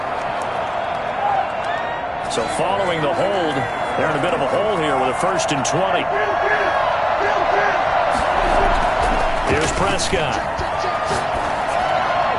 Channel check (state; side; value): identical; both; correlation 1.00